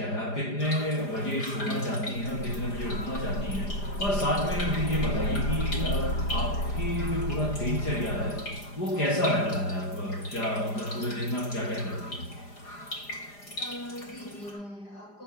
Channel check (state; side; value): late; right; 4.9 ms